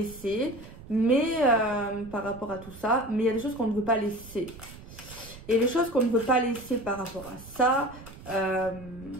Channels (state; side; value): noise; right; rumble, 17 dB below the sound